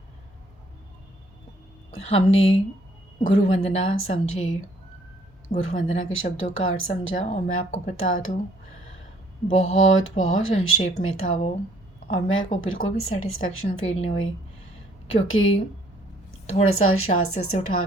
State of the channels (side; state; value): both; normal; correlation 0.62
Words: हमने गुरु वंदना समझी, गुरु वंदना के शब्दों का अर्थ समझा और मैं आपको बता दूं बहुत बहुत संक्षेप में था वो। और मेरे को बिल्कुल भी सेटिस्फेक्शन फील नहीं हुई क्योंकि थोड़ा सा शास्त्र से उठा